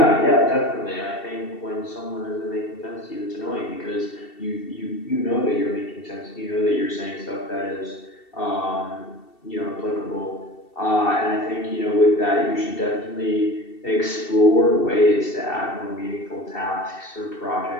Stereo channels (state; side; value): late; right; 2.7 ms